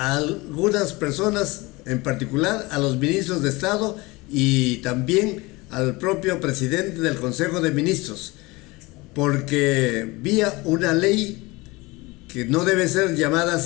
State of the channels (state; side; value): quieter; right; 23.2 dB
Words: algunas personas, en particular a los ministros de Estado y también al propio presidente del Consejo de Ministros, porque vía una ley que no debe ser llamada